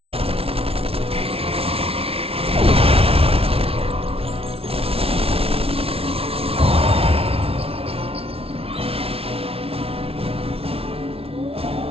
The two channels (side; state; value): left; late; 0.28 ms